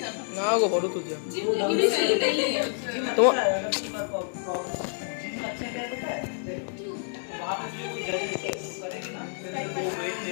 না গো ফটো তুলছে তোমার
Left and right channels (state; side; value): silent; right; digital silence